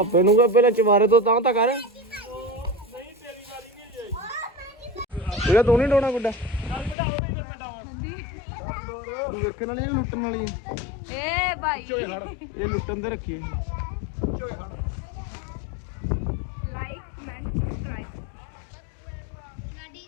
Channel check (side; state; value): right; drops out; at 7.0 s